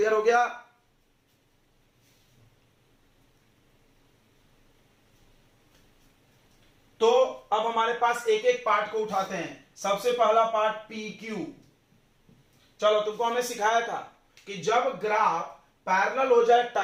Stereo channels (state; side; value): identical; both; correlation 1.00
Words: हो गया। तो अब हमारे पास एक एक पार्ट को उठाते हैं। सबसे पहला पार्ट पी क्यू। चलो तुमको हमने सिखाया था कि जब ग्राफ पैरेलल हो जाए